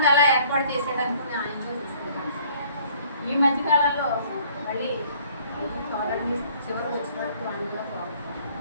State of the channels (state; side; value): inverted; both; correlation -0.57